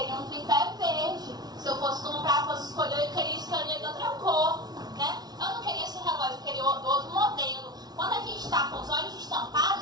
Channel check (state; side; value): late; left; 0.19 ms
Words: um tripé verde. Se eu fosse comprar, fosse escolher, eu queria escolher de outra cor, né? Eu não queria esse relógio, eu queria outro modelo. Quando a gente está com os olhos